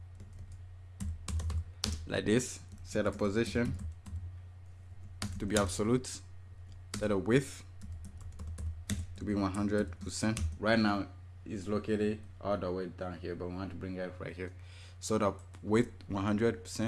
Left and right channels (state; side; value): identical; both; correlation 1.00